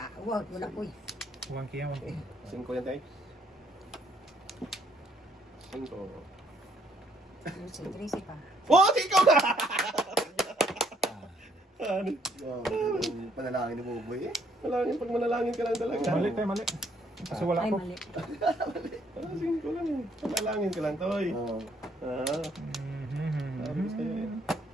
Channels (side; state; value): both; normal; correlation 0.68